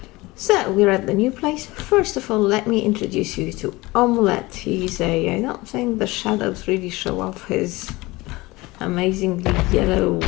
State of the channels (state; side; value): quieter; right; 21.4 dB